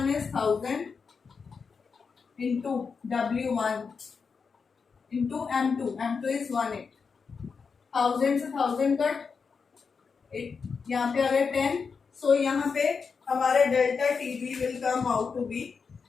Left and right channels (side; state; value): right; quieter; 5.4 dB